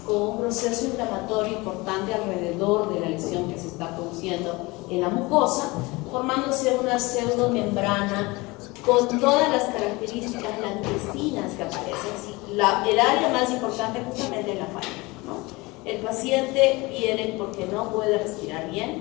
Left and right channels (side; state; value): right; quieter; 23.4 dB